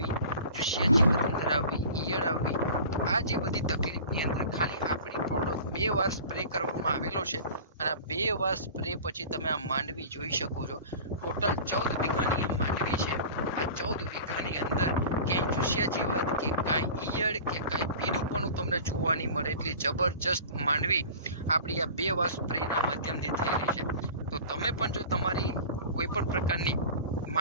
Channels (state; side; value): inverted; both; correlation -0.39